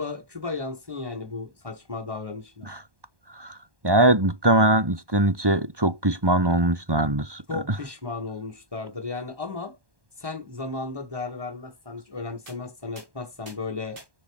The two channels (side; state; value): left; late; 1.2 ms